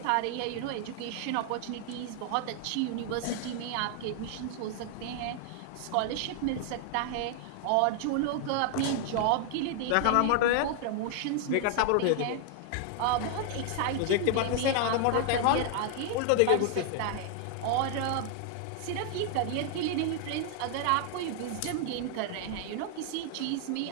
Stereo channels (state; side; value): different; both; correlation 0.00